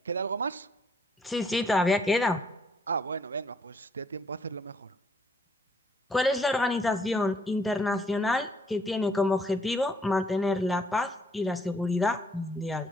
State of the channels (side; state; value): both; normal; correlation 0.69